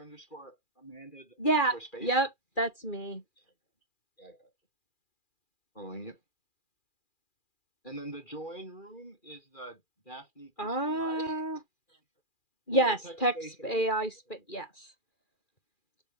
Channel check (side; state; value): right; late; 2.4 ms